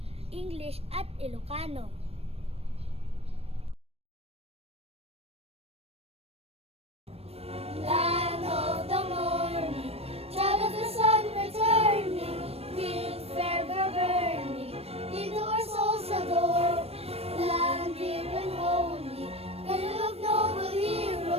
English at Ilocano. Land of the morning, child of the sun returning, with fervor burning, into our souls adore. Land dear and holy, cradle of noble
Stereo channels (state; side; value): late; left; 0.29 ms